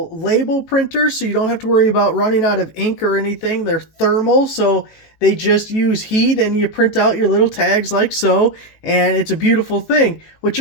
label printers, so you don't have to worry about running out of ink or anything. They're thermal, so they just use heat and you print out your little tags like so, and it's a beautiful thing. What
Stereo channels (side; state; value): right; late; 18 ms